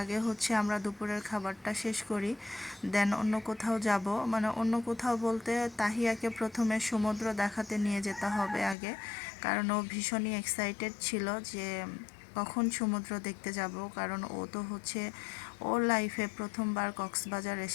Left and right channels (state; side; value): drops out; right; at 8.8 s